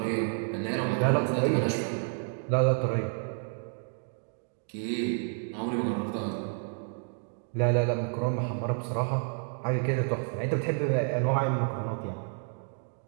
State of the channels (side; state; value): left; silent; 58 dB below the other